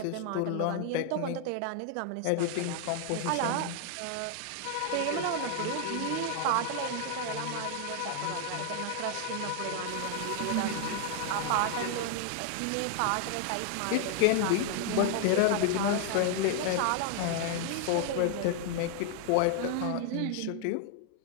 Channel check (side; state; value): both; different; correlation 0.00